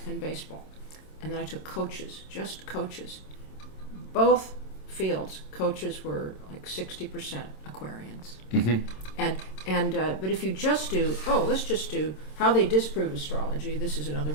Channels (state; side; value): late; right; 26 ms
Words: and baseball. And then I took coaches, just coaches. Both fields, coaches were like 60% Aquarians. But if you just do, let's just do how they disprove astrology. This is another